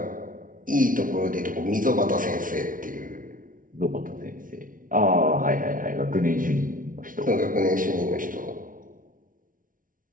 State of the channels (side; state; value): left; late; 0.39 ms